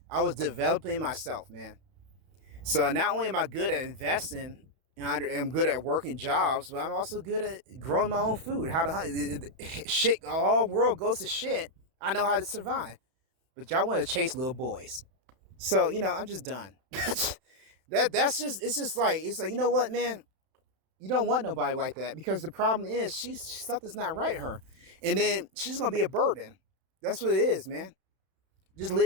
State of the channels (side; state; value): left; late; 32 ms